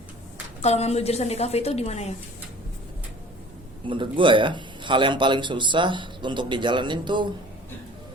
kalau ngambil jurusan DKV itu di mana ya? Menurut gua ya, hal yang paling susah untuk dijalanin tuh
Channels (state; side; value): normal; both; correlation 0.47